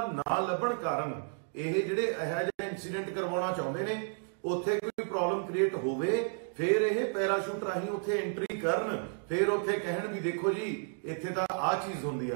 ਨਾ ਲੱਭਣ ਕਾਰਨ ਇਹ ਜਿਹੜੇ ਇਹੋ ਜਿਹਾ ਇਨਸੀਡੈਂਟ ਕਰਵਾਉਣਾ ਚਾਹੁੰਦੇ ਨੇ, ਉੱਥੇ ਕੋਈ ਪ੍ਰੋਬਲਮ ਕ੍ਰੀਏਟ ਹੋਵੇ, ਫਿਰ ਇਹ ਪੈਰਾਸ਼ੂਟ ਰਾਹੀਂ ਉੱਥੇ ਐਂਟਰੀ ਕਰਨ, ਫਿਰ ਉੱਥੇ ਕਹਿਣ ਵੀ ਦੇਖੋ ਜੀ ਇੱਥੇ ਤਾਂ ਆਹ ਚੀਜ਼ ਹੁੰਦੀ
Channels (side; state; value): left; silent; digital silence